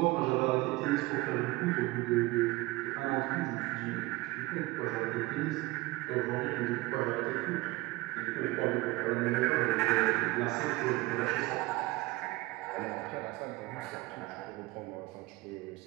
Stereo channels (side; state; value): left; quieter; 20.4 dB